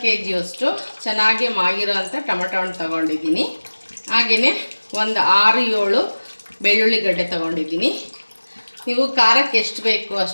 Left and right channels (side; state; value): both; inverted; correlation -1.00